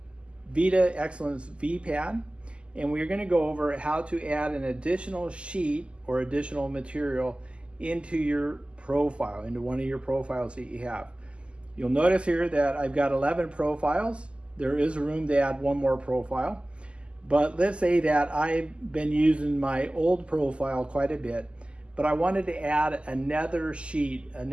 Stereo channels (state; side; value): late; left; 0.053 ms